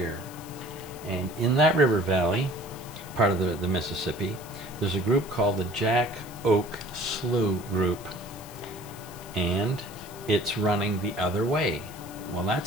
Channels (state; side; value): noise; left; hiss, 18 dB below the sound